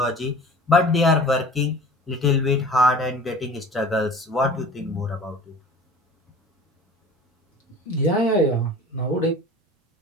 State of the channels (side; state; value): both; normal; correlation 0.42